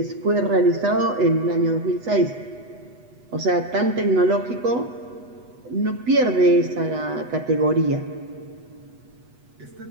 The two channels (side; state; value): left; late; 8.1 ms